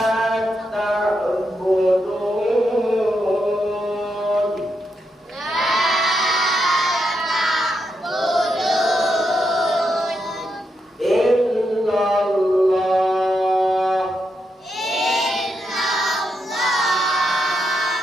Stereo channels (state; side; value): normal; both; correlation 0.83